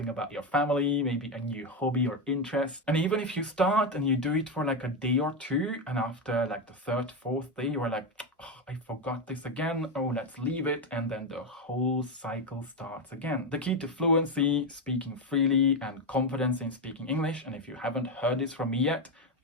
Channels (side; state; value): both; normal; correlation 0.10